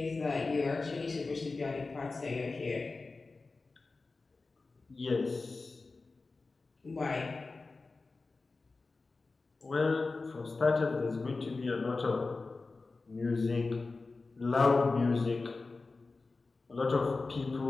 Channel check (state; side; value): quieter; right; 3.8 dB